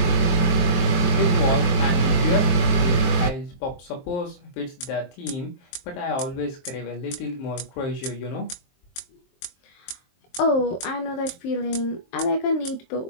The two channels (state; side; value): late; right; 23 ms